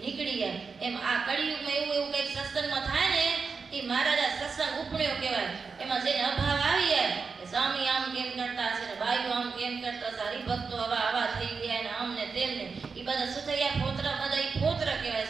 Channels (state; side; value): quieter; left; 5.0 dB